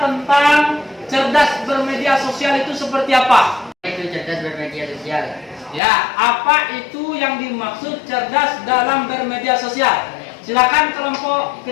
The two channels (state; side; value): drops out; right; at 5.8 s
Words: tentang cerdas bermedia sosial itu seperti apa? Itu cerdas bermedia sosial. Ya, apa itu yang dimaksud cerdas dalam bermedia sosial? Silakan kelompok